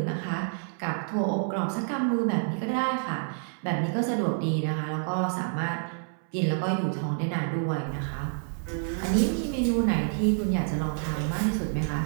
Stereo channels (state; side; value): silent; left; 59 dB below the other